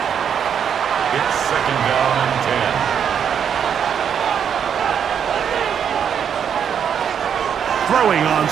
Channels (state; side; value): quieter; left; 8.0 dB